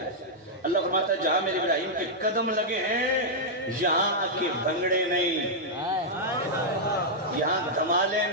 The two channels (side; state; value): both; normal; correlation -0.06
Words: ہے؟ اللہ فرماتا ہے جہاں میرے ابراہیم کے قدم لگے ہیں یہاں کے بھنگڑے نہیں، یہاں دھمالے